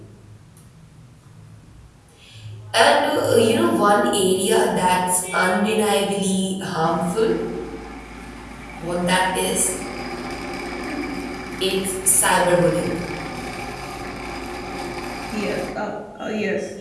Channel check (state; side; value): identical; both; correlation 1.00